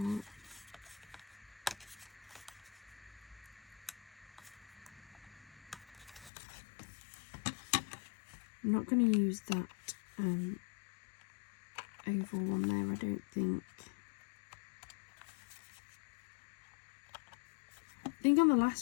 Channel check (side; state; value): right; drops out; at 6.3 s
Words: I'm not going to use that oval one there, I don't think. I think on the